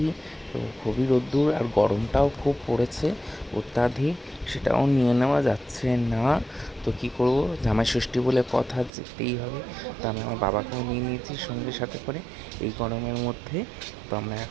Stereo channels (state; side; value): drops out; left; at 8.9 s